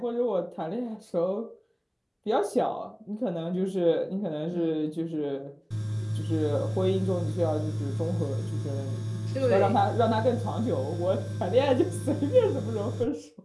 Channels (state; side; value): identical; both; correlation 1.00